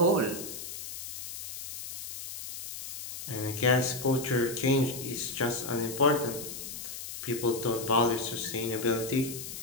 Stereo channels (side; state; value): left; noise; hiss, 9 dB below the sound